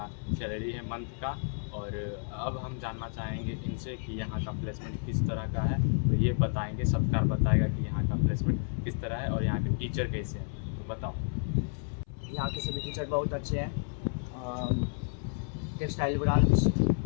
सैलरी है मंथ का। और अब हम जानना चाहेंगे इनसे कि यहाँ का प्लेसमेंट किस तरह का है। तो ये बताएंगे, सत्कार बताएगा कि यहाँ का प्लेसमेंट किस तरह है और यहाँ के टीचर कैसे हैं। तो बताओ। यहाँ के सभी टीचर बहुत अच्छे हैं। टेक्सटाइल ब्रांच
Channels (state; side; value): silent; right; 57 dB below the other